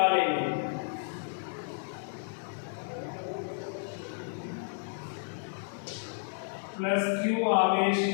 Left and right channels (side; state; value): right; silent; digital silence